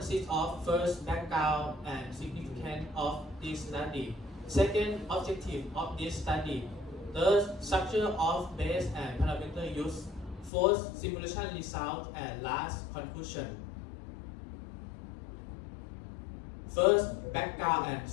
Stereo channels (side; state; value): right; drops out; at 10.5 s